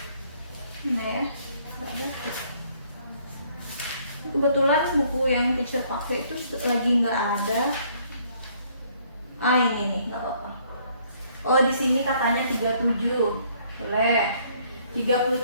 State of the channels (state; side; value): inverted; both; correlation -0.64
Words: Nah ya, nggak ada. Kebetulan buku yang teacher pakai itu lagi nggak ada. Ah, ini nih, nggak apa-apa. Oh, di sini katanya 37. Boleh.